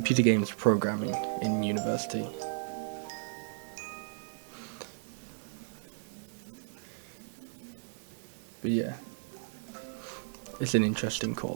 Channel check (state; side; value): silent; left; digital silence